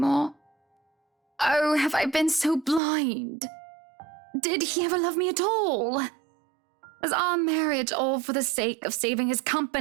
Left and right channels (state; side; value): drops out; left; at 2.8 s